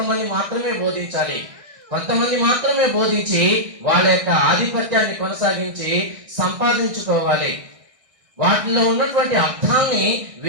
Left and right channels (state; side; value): late; left; 1.6 ms